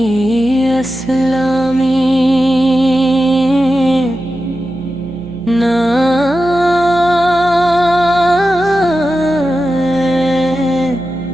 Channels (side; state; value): right; noise; hum, 16 dB below the sound